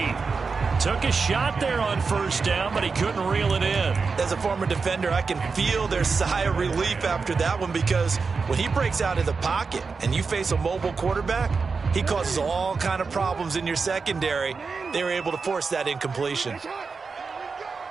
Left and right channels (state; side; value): quieter; left; 4.8 dB